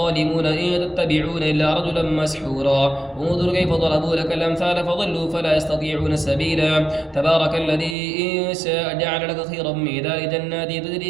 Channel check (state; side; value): drops out; left; at 8.0 s